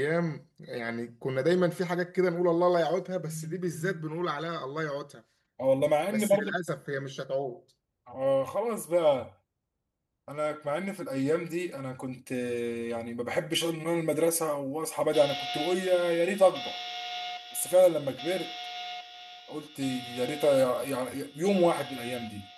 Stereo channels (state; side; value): identical; both; correlation 1.00